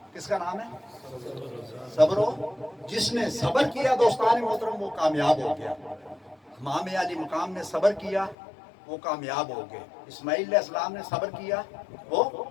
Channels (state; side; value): drops out; right; at 8.3 s